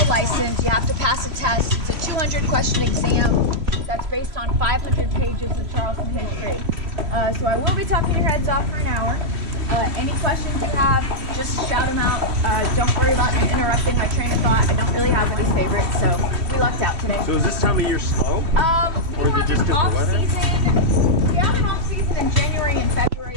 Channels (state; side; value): late; left; 3.0 ms